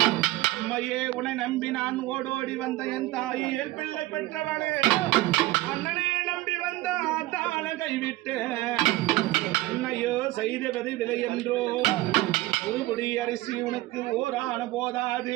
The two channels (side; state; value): left; quieter; 18.0 dB